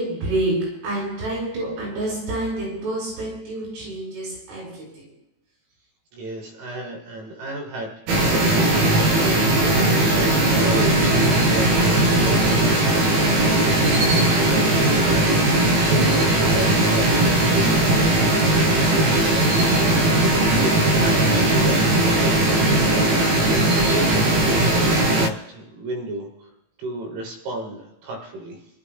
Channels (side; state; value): left; late; 18 ms